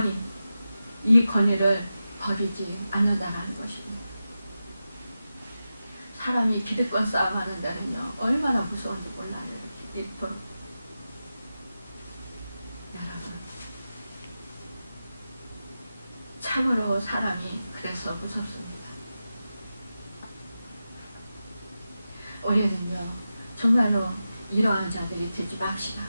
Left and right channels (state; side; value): inverted; both; correlation -0.92